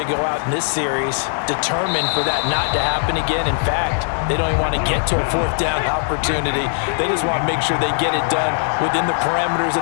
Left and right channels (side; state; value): right; silent; digital silence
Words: go out in this series determined for that not to happen again. In fact, they don't even want to get to a 4th down opportunity. They just want to make sure they get it done within the parameters